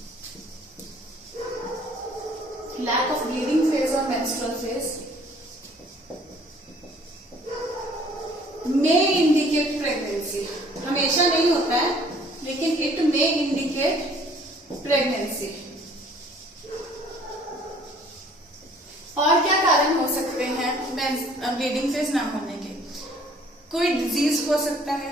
lack of bleeding phase और menstrual phase may indicate pregnancy। हमेशा नहीं होता है लेकिन it may indicate pregnancy। और क्या कारण हो सकते हैं ब्लीडिंग फेज ना होने के? कोई डिजीज हो सकता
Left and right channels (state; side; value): normal; both; correlation 0.56